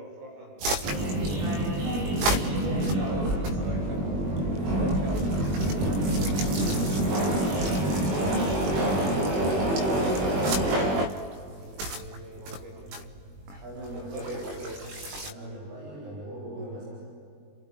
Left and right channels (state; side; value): late; left; 21 ms